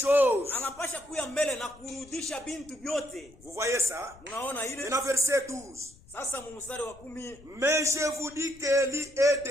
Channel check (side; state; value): left; noise; rumble, 24 dB below the sound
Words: Anapasha kuya mbele na kurudisha bintu vyote. Vous voyez ça? Unaona ile? Et dans verset 12. Sasa mstari wa 10, Mais je vous dis qu'Élie est